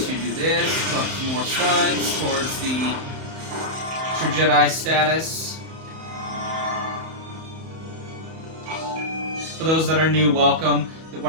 do this. Put some more studs towards the True Jedi status. For those that are new, welcome.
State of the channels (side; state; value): left; late; 31 ms